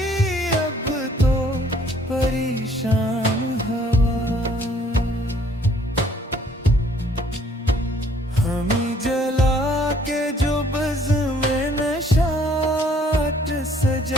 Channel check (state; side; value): normal; both; correlation 0.61